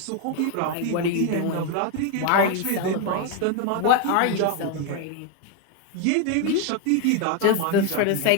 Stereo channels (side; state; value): both; different; correlation 0.01